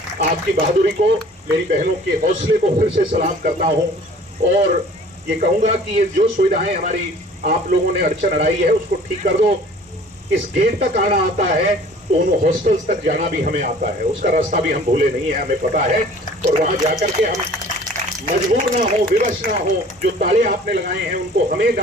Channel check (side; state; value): both; normal; correlation 0.49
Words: आपकी बहादुरी को, मेरी बहनों के हौसले को फिर से सलाम करता हूं और ये कहूंगा कि ये जो सुविधाएं हमारी आप लोगों ने अड़चन अड़ाई है उसको ठीक कर दो। इस गेट तक आना आता है तो उन हॉस्टल्स तक जाना भी हमें आता है, उसका रास्ता भी हम भूले नहीं है, हमें पता है। और वहां जाकर के हम मजबूर ना हो, विवश ना हो, जो ताले आपने लगाए हैं उनको हमें